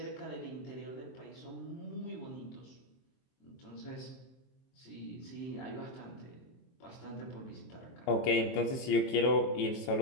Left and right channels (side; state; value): right; late; 23 ms